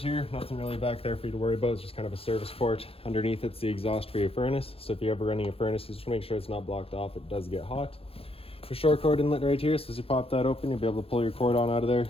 here. Nothing really back there for you to worry about. It's just kind of a service port. Underneath it's the exhaust for your furnace. So if you're ever running a furnace, you just make sure it's not blocked off. It does get hot. Your short cord inlet right here. So as you pop that open, you'll be able to pull your cord on out of there. You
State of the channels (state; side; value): late; right; 0.27 ms